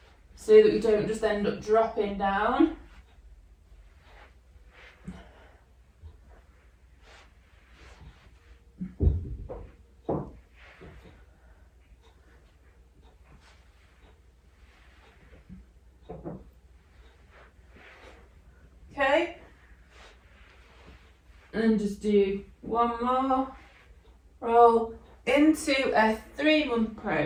so that we don't just end up dropping down. Okay, and just do one more roll into a 3-month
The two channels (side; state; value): both; identical; correlation 1.00